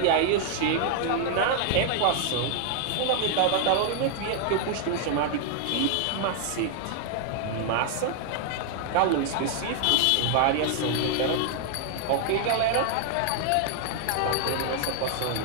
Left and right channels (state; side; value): different; both; correlation 0.00